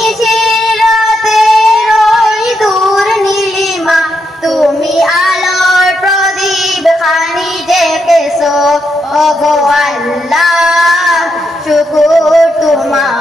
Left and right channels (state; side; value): normal; both; correlation 0.81